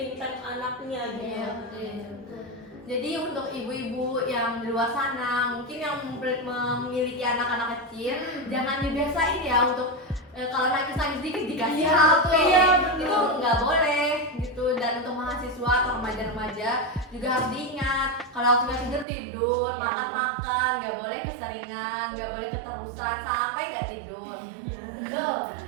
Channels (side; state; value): left; drops out; at 19.1 s